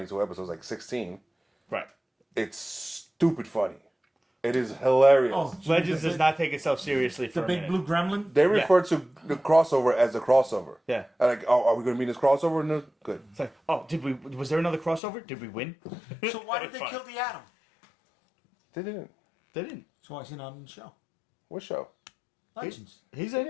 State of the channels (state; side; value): drops out; right; at 15.0 s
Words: episodes, like 16. Right. It's stupid funny. It is hilarious. Oh, Legends does not take itself seriously for The a big minute. blue gremlin? They refer to the crossover as a crossover. Yeah. Like, oh, are we going to be in this crossover? No, good. It's like, oh, was there another crossover? Did we win? So why did they Fine. kill the Atom? They didn't. They didn't. So why is he not in the show? What show? Legends. He's in